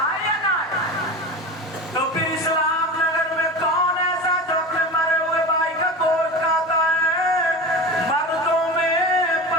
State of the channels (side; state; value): both; normal; correlation 0.29